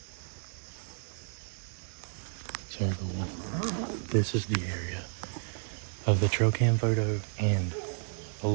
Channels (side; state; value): left; silent; 56 dB below the other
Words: So everyone, this is the area of the trail cam photo and a